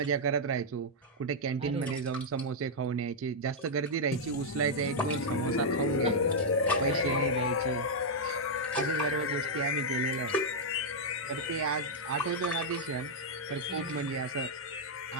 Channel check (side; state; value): both; normal; correlation -0.04